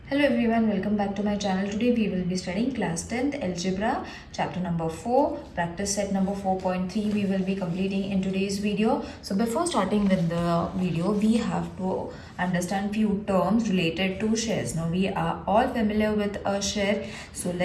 Hello everyone, welcome back to my channel. Today we will be studying class 10th algebra chapter number 4, practice set number 4.3 we will be completing in today's video. So before starting with the video, we have to understand few terms related to shares. Now we are all familiar with a share, so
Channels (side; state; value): both; identical; correlation 1.00